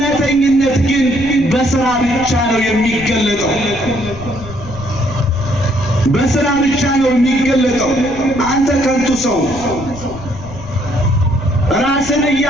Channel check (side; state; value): left; noise; rumble, 15 dB below the sound